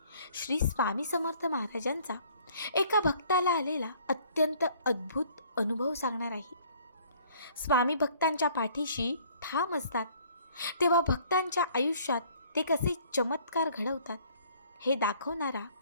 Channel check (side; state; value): both; inverted; correlation -0.57